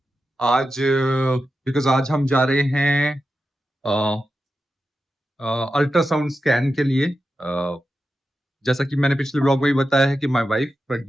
आज बिकॉज आज हम जा रहे हैं अल्ट्रासाउंड स्कैन के लिए। जैसा कि मैंने पिछले व्लॉग में भी बताया है कि my wife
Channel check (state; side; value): normal; both; correlation 0.90